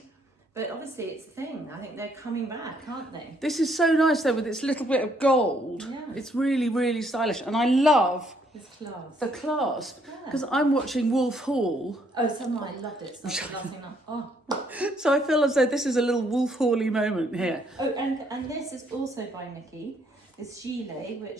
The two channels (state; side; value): normal; both; correlation 0.69